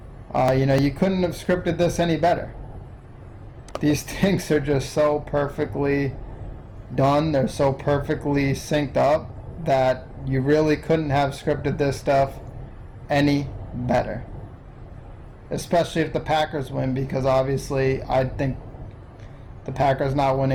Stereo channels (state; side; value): identical; both; correlation 1.00